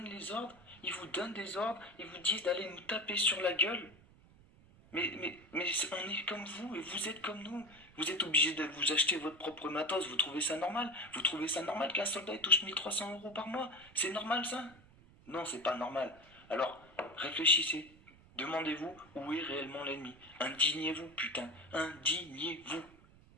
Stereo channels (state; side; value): noise; right; rumble, 25 dB below the sound